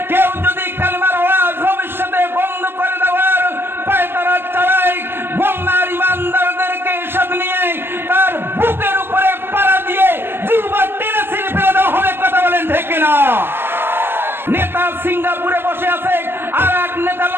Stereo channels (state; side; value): late; left; 0.10 ms